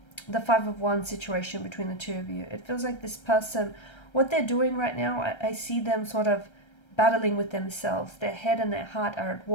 the Five of Wands situation between the two of you. It feels like this person, what they're doing right now, I see them sort of battling with themselves. Their head and their heart are at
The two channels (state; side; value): late; right; 1.3 ms